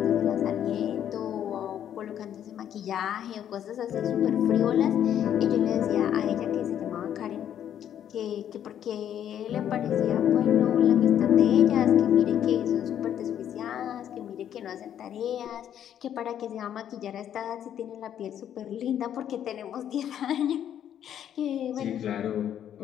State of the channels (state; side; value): quieter; right; 10.0 dB